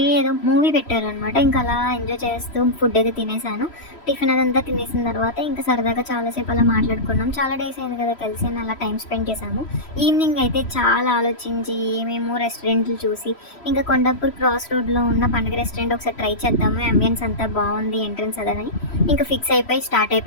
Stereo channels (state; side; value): late; right; 3.1 ms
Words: ఏదో మూవీ పెట్టారనమాట. ఇంకా అలా ఎంజాయ్ చేస్తూ ఫుడ్ అయితే తినేసాను. టిఫిన్ అదంతా తినేసిన తర్వాత ఇంకా సరదాగా చాలాసేపు అలా మాట్లాడుకున్నాం. చాలా డేస్ అయింది కదా కలిసి, అని అలా టైం స్పెండ్ చేసాము. ఈవినింగ్ అయితే చాలా ఆలోచించి ఏమేమో రెస్టారెంట్లు చూసి ఇంకా కొండాపూర్ క్రాస్ రోడ్లో ఉన్న పండుగ రెస్టారెంట్ ఒకసారి ట్రై చేద్దాము, అంబియన్స్ అంతా బాగుంది, ఎంట్రన్స్ అదని ఇంకా ఫిక్స్ అయిపోయి స్టార్ట్